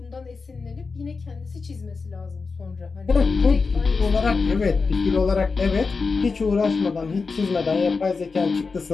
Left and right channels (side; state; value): right; quieter; 4.5 dB